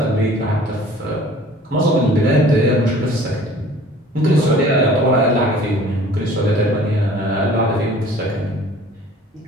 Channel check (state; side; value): normal; both; correlation 0.49